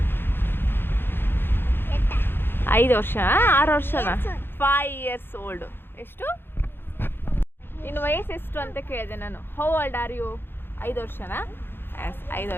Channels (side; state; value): right; late; 0.10 ms